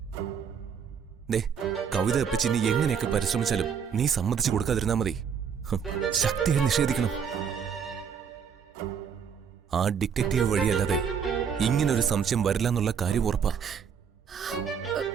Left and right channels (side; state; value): left; quieter; 7.1 dB